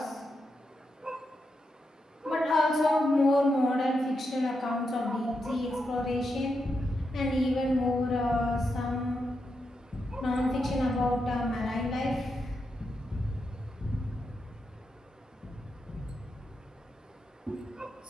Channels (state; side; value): normal; both; correlation 0.85